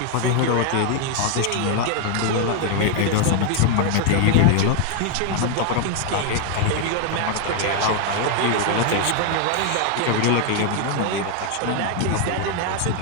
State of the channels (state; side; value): different; both; correlation 0.00